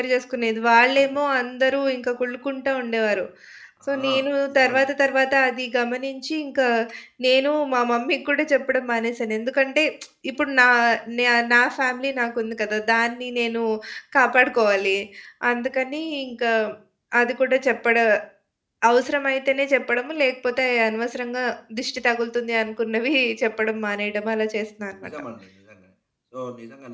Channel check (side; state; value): both; identical; correlation 1.00